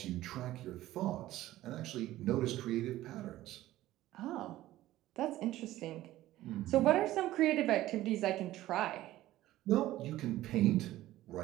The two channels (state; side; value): quieter; left; 15.3 dB